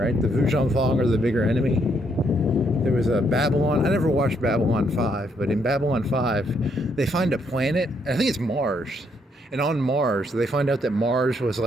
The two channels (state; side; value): normal; both; correlation 0.73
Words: The Vujon Thong are the bigger enemy. There was a Babylon. I never watched Babylon 5, but in Babylon 5, they find a planet, I think it's Mars. And on Mars, they find out that Mars was